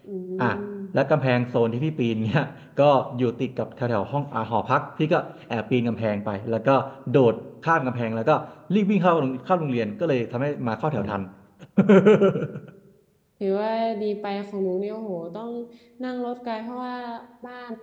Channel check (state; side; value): identical; both; correlation 1.00